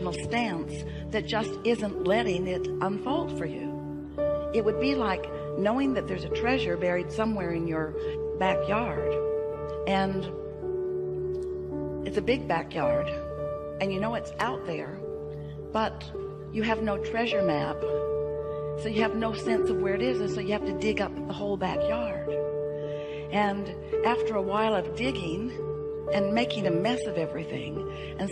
stance that just isn't letting it unfold for you. It would be like knowing that there's a treasure buried somewhere in your backyard, and it's a big backyard, and you know it's out there, but you have no treasure map. So you have no sense of where it is, and so you have to dig up the whole backyard. And after a while of digging and making a mess of everything and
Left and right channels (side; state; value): both; identical; correlation 1.00